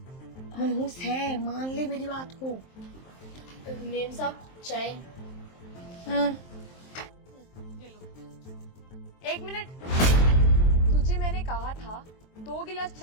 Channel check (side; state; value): right; late; 23 ms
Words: है, मान ले मेरी बात को। मेम साहब चाय। एक मिनट, तुझे मैंने कहा था 2 गिलास